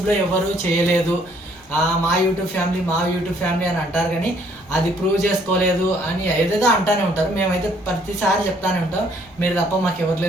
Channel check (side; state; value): left; noise; rumble, 30 dB below the sound